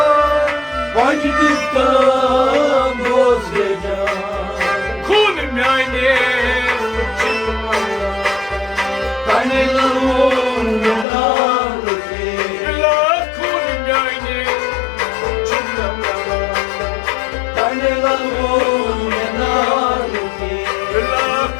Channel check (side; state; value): right; drops out; at 11.1 s